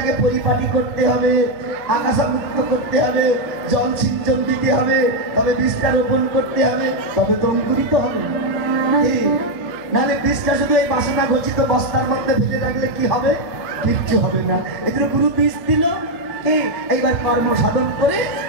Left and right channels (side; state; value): both; normal; correlation 0.02